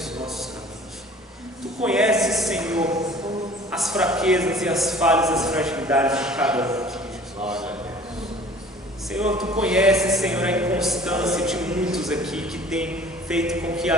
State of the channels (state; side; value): normal; both; correlation 0.48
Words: nossos caminhos. Tu conheces, Senhor, as fraquezas e as falhas, as fragilidades de cada um aqui, Jesus. Senhor, Tu conheces, Senhor, a inconstância de muitos aqui que tem feito com que